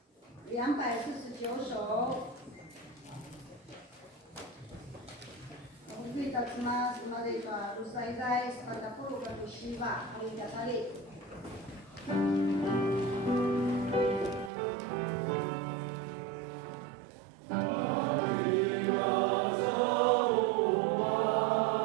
249首。Mungkin tak cuma mereka usai-usai pada puluh bermusibah hari kali.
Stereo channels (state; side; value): drops out; left; at 14.5 s